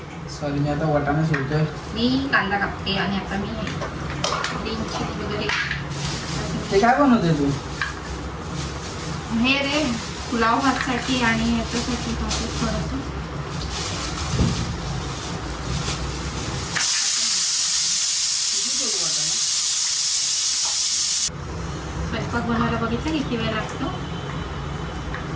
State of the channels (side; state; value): both; identical; correlation 1.00